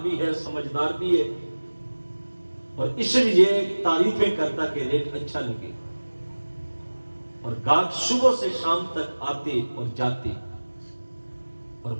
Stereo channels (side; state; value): both; inverted; correlation -1.00